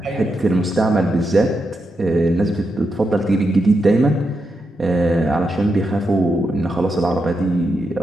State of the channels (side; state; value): both; normal; correlation 0.85